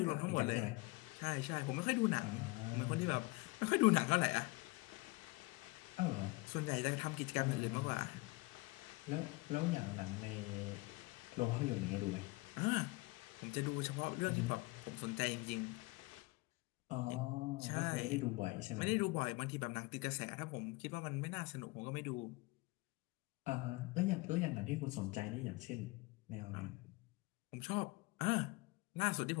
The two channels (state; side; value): quieter; right; 24.1 dB